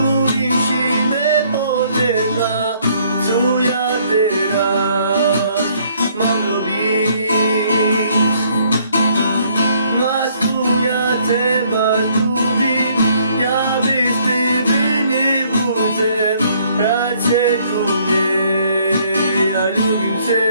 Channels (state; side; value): inverted; both; correlation -0.64